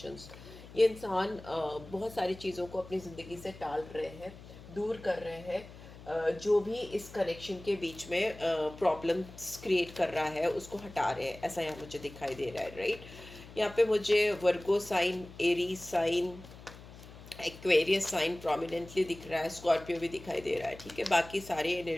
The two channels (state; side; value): noise; left; hum, 17 dB below the sound